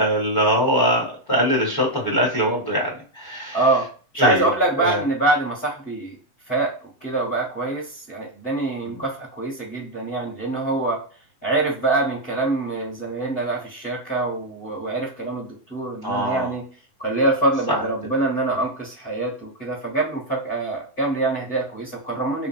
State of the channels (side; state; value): right; late; 7.9 ms